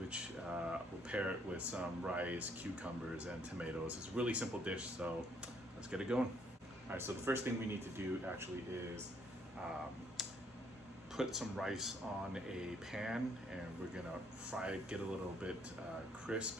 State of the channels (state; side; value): normal; both; correlation 0.68